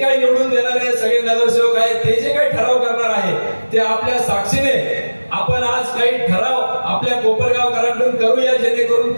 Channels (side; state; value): both; inverted; correlation -1.00